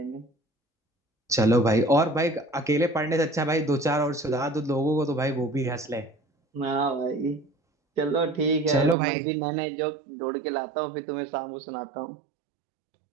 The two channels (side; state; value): left; drops out; at 9.0 s